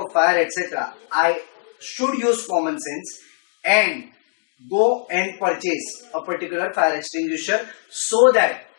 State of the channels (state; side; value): silent; right; digital silence